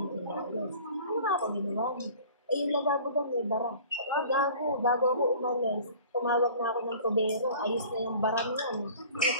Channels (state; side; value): inverted; both; correlation -0.46